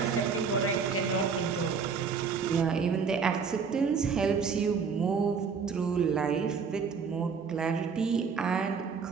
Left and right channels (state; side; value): quieter; left; 5.7 dB